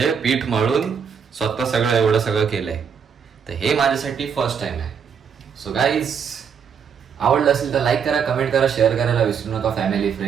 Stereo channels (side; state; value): left; quieter; 7.0 dB